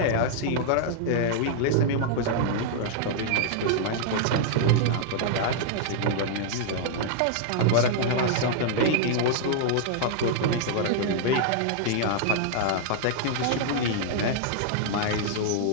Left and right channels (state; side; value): different; both; correlation -0.01